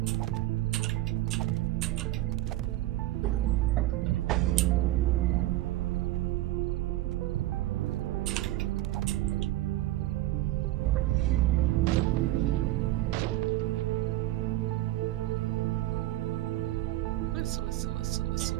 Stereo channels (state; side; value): quieter; left; 15.8 dB